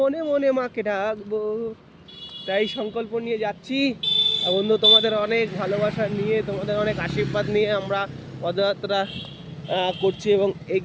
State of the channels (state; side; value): identical; both; correlation 1.00